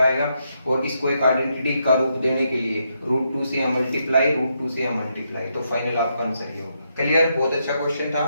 आएगा, और इसको एक आइडेंटिटी का रूप देने के लिए √2 से यहाँ मल्टीप्लाई, √2 से यहाँ मल्टीप्लाई, तो फाइनल आपका आंसर ये होगा। क्लियर, बहुत अच्छा क्वेश्चन था,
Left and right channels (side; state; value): both; inverted; correlation -0.79